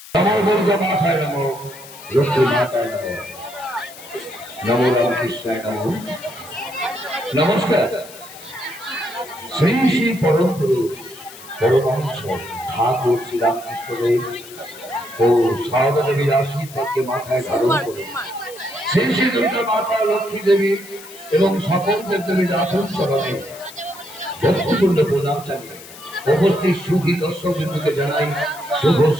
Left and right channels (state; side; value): noise; left; hiss, 17 dB below the sound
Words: সমবর্গ মাথায় নমো, লক্ষ্মী মাতায় নমো, নমো রামকৃষ্ণায় নমো। নমস্কার। শ্রী শ্রী পরম পুরুষ পরমহংস ঠাকুর শ্রীরামকৃষ্ণদেব ও সারদা দেবীর আশীর্বাদকে মাথায় ধারণ করে শ্রী শ্রী দুর্গা মাতা, লক্ষ্মী দেবী এবং সকল দেবদেবীর আসন চরণে ভক্তিপূর্ণ প্রণাম জানিয়ে উপস্থিত সুধী দর্শক বিন্দুকে জানাই শুভ